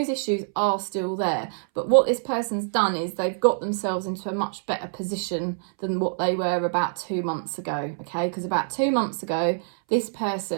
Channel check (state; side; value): silent; left; 61 dB below the other